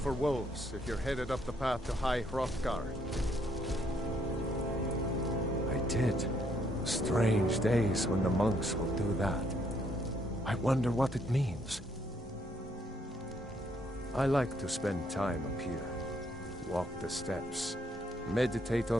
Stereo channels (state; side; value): normal; both; correlation 0.71